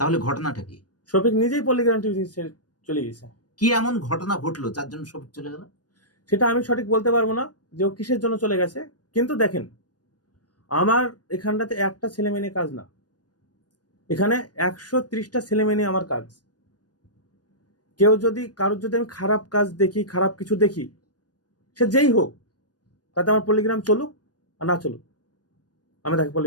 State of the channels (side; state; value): right; late; 0.69 ms